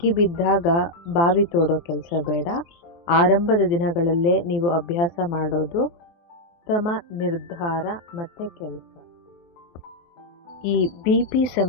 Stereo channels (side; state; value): right; late; 23 ms